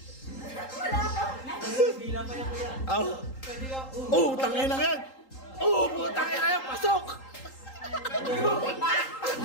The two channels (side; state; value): right; late; 3.8 ms